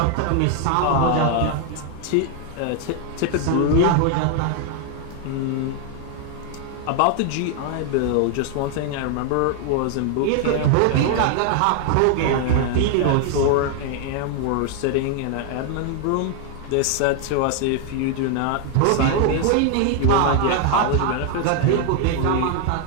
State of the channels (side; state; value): both; different; correlation 0.00